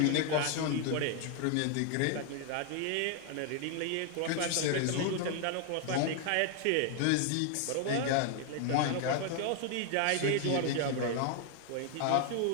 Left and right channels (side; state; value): both; different; correlation 0.00